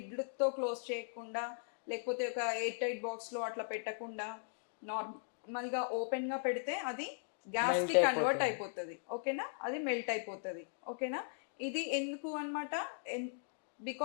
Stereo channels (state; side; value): silent; right; digital silence